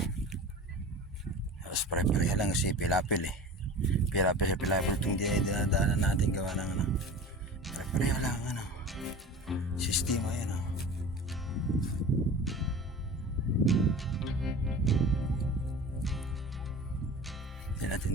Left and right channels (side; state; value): both; normal; correlation 0.36